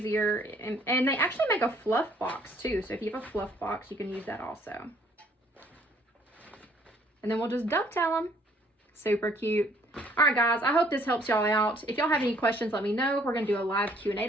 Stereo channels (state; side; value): normal; both; correlation 0.61